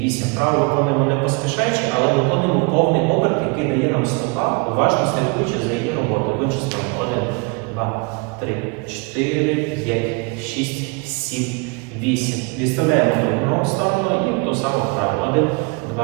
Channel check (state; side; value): quieter; left; 30.6 dB